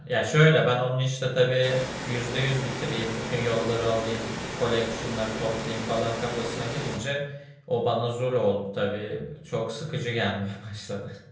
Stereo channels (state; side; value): identical; both; correlation 1.00